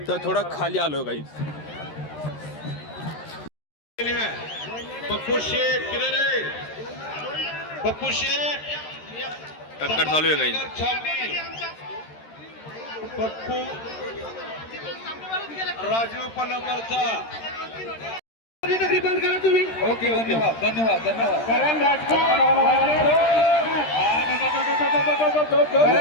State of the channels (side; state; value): right; late; 13 ms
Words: तर थोडा खाली आलो गाईस. पप्पू शेठ किधर है? पप्पू शेठ टक्कर चालू आहे गाईस. पप्पू राजू पलंबरचा बंद करा तुम्ही. ओके धन्यवाद. करण राजपूत